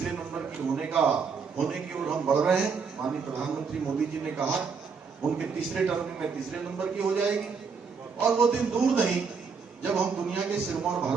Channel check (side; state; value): left; quieter; 5.5 dB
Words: नंबर की होने की ओर हम बढ़ रहे हैं। माननीय प्रधानमंत्री मोदी जी ने कहा उनके तीसरे टर्म में तीसरे नंबर की हो जाएगी, और वो दिन दूर नहीं जब हम दुनिया के सिरमौर